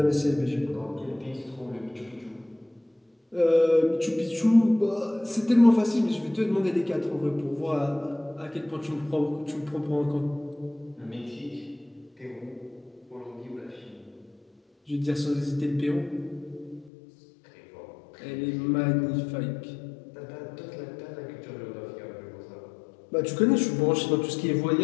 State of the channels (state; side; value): drops out; right; at 16.9 s